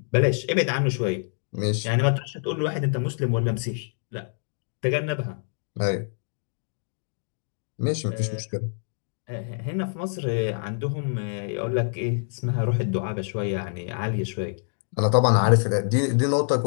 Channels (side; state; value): right; silent; digital silence